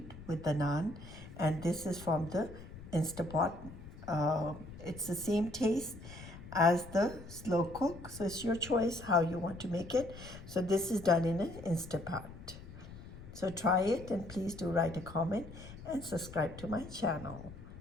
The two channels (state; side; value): noise; left; rumble, 14 dB below the sound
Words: with the naan. And this is from the Instapot. It's the same taste as the slow cook, so it's your choice how you want to make it. So this is done in an Instapot. So try it, and please do write a comment and subscribe to my channel.